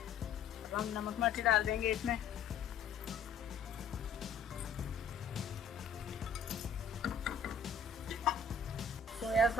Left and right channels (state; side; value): quieter; right; 5.0 dB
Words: अब हम नमक मिर्च डाल देंगे इसमें। सोया